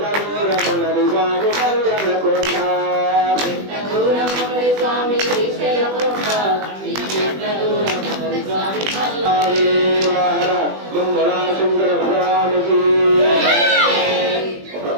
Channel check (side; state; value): left; late; 20 ms